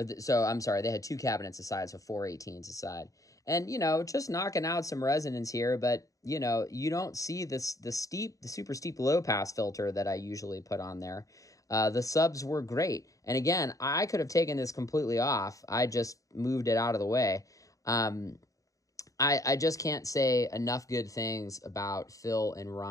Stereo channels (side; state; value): right; late; 0.16 ms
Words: I'm sorry, they had 2 cabinets a side, so 4 18s a side. And, you know, just knocking out some resonance here, but, you know, you don't see the super steep low pass filter that I usually put on there. The subs were great. And again, I could have taken this completely off. I just moved it out of the way. I just can't say enough good things about Phil and